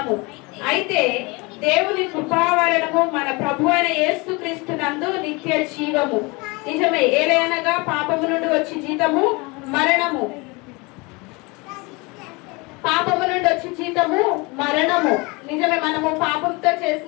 అయితే దేవుని కృపా వలనము మన ప్రభు అయిన యేసుక్రీస్తు నందు నిత్య జీవము. నిజమే, ఏలయనగా పాపము నుండి వచ్చి జీతము మరణము, పాపము నుండి వచ్చి జీతము మరణము. నిజమే, మనము పాపంతో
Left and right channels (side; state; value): right; quieter; 26.5 dB